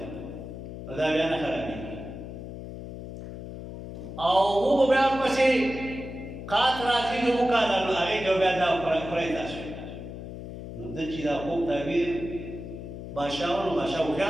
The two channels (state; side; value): noise; left; hum, 10 dB below the sound